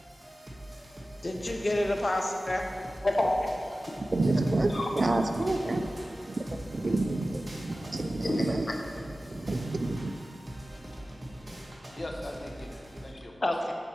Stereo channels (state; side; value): normal; both; correlation 0.95